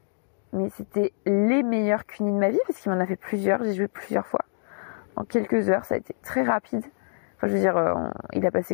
Mais c'était les meilleurs cunis de ma vie, parce qu'il m'en a fait plusieurs, j'ai joué plusieurs fois. En quelques heures, ça a été très rapide. Enfin, je veux dire, il a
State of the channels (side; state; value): right; silent; digital silence